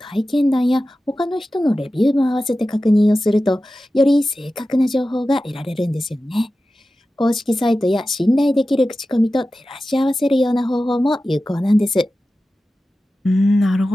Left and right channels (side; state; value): both; normal; correlation 0.94